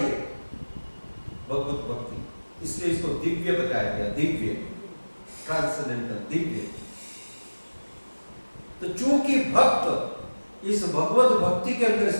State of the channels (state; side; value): inverted; both; correlation -1.00